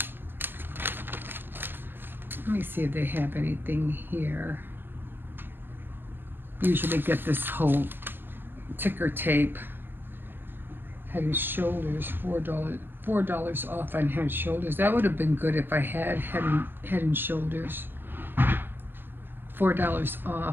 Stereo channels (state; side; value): late; left; 0.097 ms